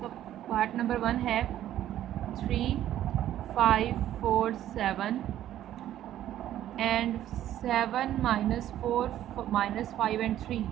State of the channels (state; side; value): quieter; left; 12.2 dB